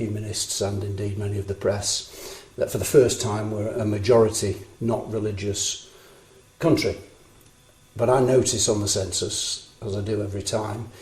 and indeed many of the press that for the first time we're a majority, not religious country. But I notice on the census, as I do every time,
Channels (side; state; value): both; identical; correlation 1.00